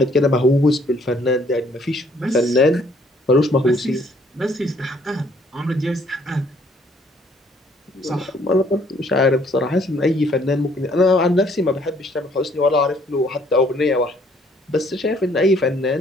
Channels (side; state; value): both; normal; correlation 0.63